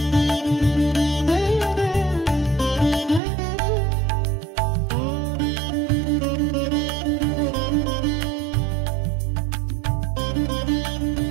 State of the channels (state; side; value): drops out; left; at 3.2 s